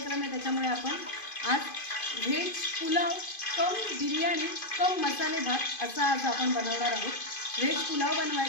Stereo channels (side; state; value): right; late; 2.5 ms